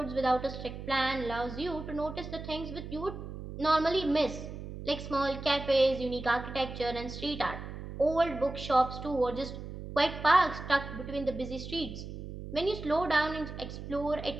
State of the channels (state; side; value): noise; right; hum, 10 dB below the sound